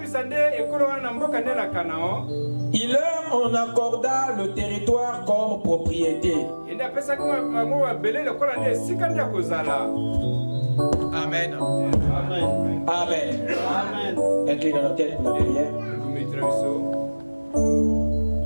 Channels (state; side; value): inverted; both; correlation -1.00